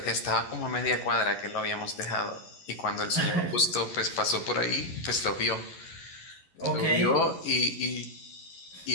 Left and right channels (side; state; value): right; late; 11 ms